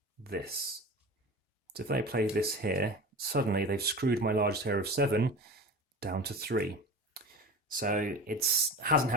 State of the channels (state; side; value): normal; both; correlation 0.32